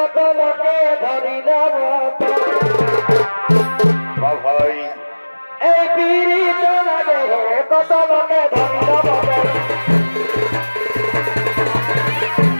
লোকে ধরিল ভাই এই পিড়িতে লাগে কত লোকে ধরিল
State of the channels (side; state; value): both; inverted; correlation -1.00